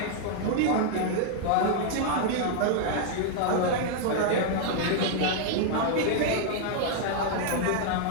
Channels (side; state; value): both; different; correlation 0.00